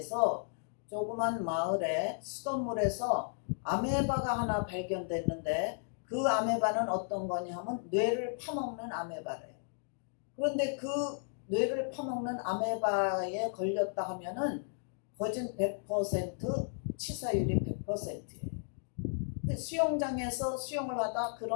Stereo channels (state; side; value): silent; right; digital silence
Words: 조그만 마을에 수돗물에서 아메바가 하나 발견됐는데, 그 아메바는 어떤 거냐 하면 뇌를 파먹는 아메바래요. 그런데 그 뇌를 파먹는 아메바에 걸렸다 하면은 거진 100% 치사율이 100%예요. 근데 수영장에서 수영을 하다